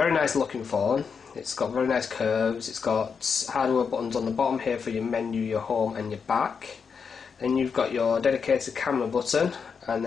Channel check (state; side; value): quieter; right; 6.0 dB